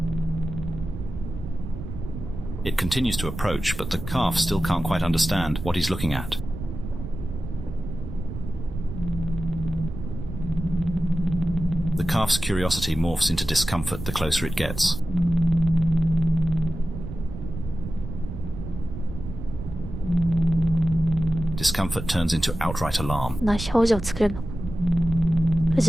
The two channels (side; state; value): right; noise; rumble, 8 dB below the sound